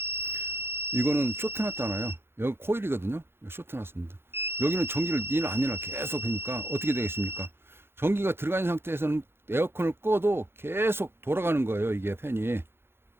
이거는 쇼트 났잖아요. 여기 코일이거든요. 쇼트 났습니다. 여기는 전기를 니나 아니나 계속 하니까 어떻게 되겠습니까? 전기가 들어가 있는 상태에서는 에어컨을 꺼도 계속 돌아가는 거예요. 이게 팬이.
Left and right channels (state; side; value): late; left; 0.11 ms